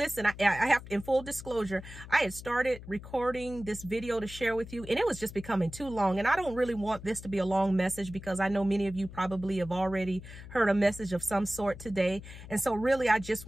I have, in full disclosure, I had started recording this video to share with you, and it was just becoming too long. And I don't really want this to be a long message because I know many of you probably have already heard a message of some sort today. And so really, I just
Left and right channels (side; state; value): left; noise; hum, 14 dB below the sound